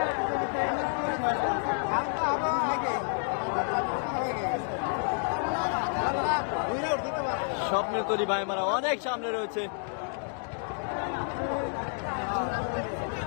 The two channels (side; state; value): right; silent; 58 dB below the other